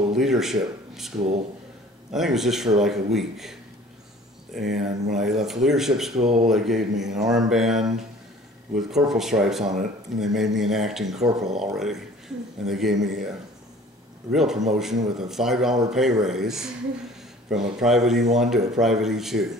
leadership school. I think it was just for like a week. And when I left leadership school, they gave me an armband with corporal stripes on it, and they made me an acting corporal already. And they gave me a real promotion with a $5 pay raise from a private E1 to a private E2.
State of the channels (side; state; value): both; normal; correlation 0.49